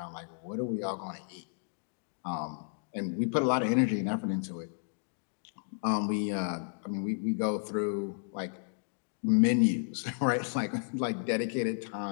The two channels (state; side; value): silent; right; digital silence